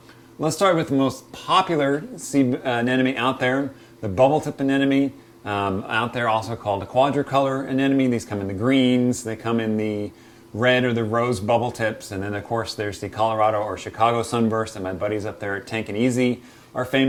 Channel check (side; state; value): both; identical; correlation 1.00